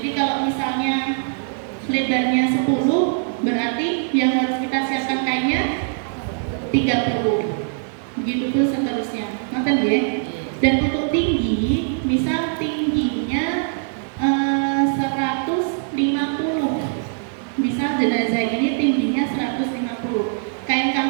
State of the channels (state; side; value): silent; left; 60 dB below the other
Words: kalau misalnya lebarnya 10, berarti yang harus kita siapkan kainnya 30. Begitu pun seterusnya. Ngerti ya? Dan untuk tinggi, misal tingginya 150. Misal jenazah ini tingginya 150. Kain